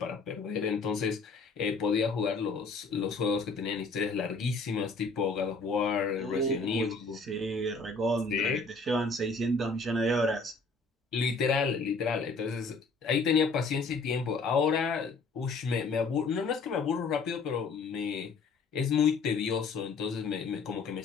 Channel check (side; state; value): right; quieter; 4.0 dB